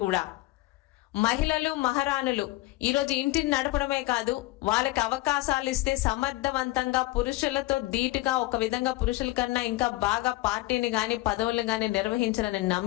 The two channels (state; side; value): quieter; right; 19.2 dB